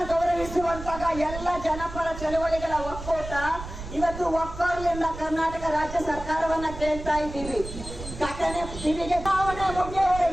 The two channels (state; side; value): noise; right; rumble, 11 dB below the sound